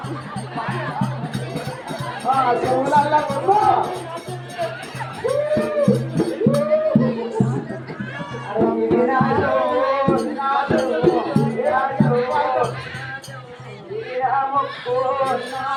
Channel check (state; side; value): identical; both; correlation 1.00